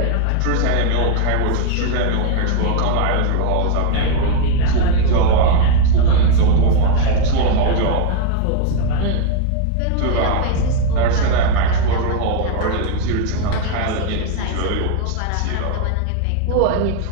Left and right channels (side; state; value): both; different; correlation 0.01